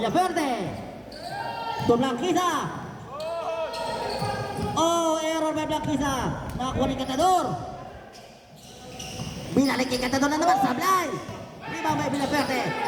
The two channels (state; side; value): identical; both; correlation 1.00